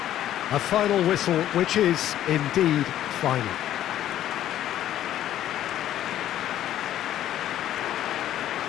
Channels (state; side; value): quieter; right; 12.1 dB